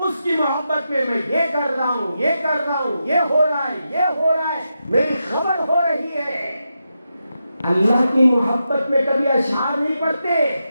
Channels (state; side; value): inverted; both; correlation -0.87